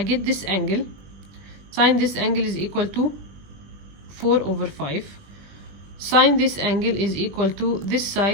this angle. Sine this angle is equal to 4 over 5. Sine this angle is equal to this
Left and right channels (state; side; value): late; left; 20 ms